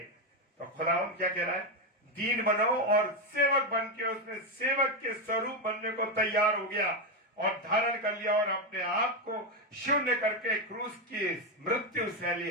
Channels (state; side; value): normal; both; correlation 0.08